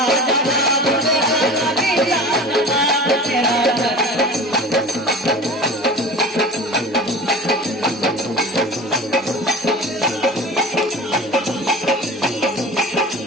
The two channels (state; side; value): normal; both; correlation 0.37